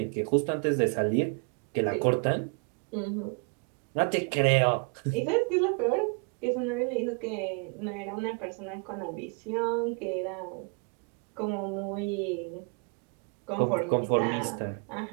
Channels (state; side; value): quieter; left; 35.4 dB